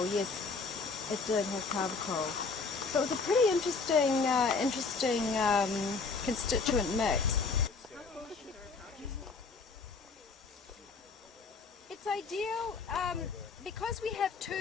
yes, it did have carbochol. So it was a pretty interesting, constituent mix. It's ideal because we have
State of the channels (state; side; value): quieter; right; 4.5 dB